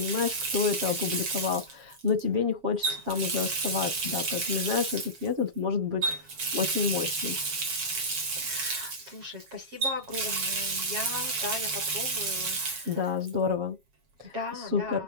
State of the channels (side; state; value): left; late; 7.3 ms